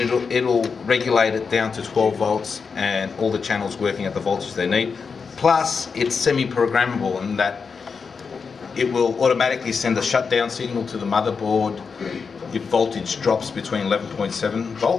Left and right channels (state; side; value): quieter; right; 5.4 dB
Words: regulate it down to 12 volts and all the channels working at the voltage they need. Plus it's semi-programmable in that it will automatically send a shutdown signal to the motherboard if voltage drops between 11.7